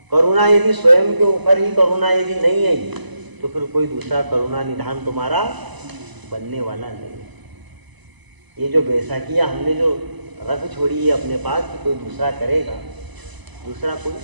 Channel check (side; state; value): left; late; 1.0 ms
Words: करुणा यदि स्वयं के ऊपर ही करुणा यदि नहीं आई तो फिर कोई दूसरा करुणा निधान तुम्हारा बनने वाला नहीं। ये जो बैसाखियाँ हमने जो रख छोड़ी है अपने पास कि कोई दूसरा करेगा, दूसरा कोई